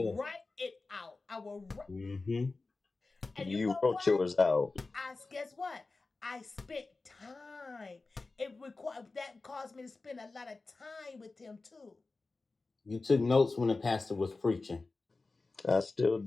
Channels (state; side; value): quieter; right; 3.6 dB